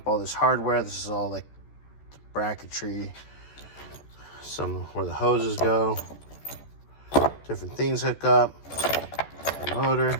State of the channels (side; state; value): right; late; 14 ms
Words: all this hardware. This is all like the bracketry, some where the hoses go, different things hook up, the motor,